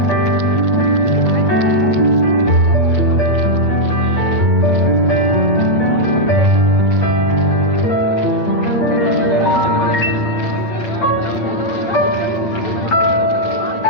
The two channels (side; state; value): right; late; 8.7 ms